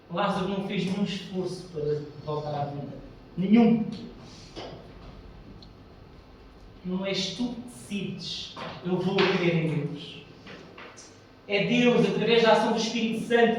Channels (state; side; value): identical; both; correlation 1.00